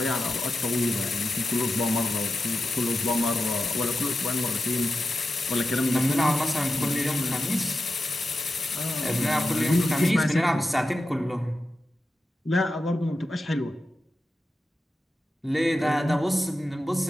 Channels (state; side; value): normal; both; correlation 0.91